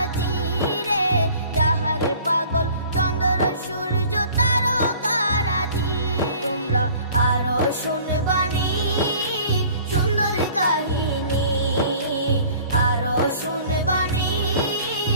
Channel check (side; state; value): both; inverted; correlation -0.49